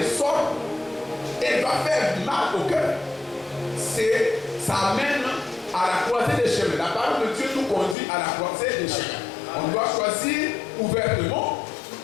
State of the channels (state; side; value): drops out; right; at 8.0 s